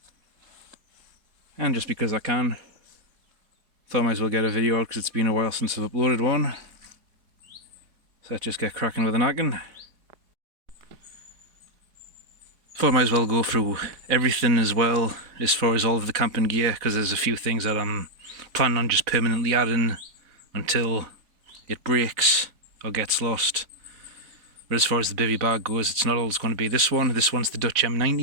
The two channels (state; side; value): late; left; 4.1 ms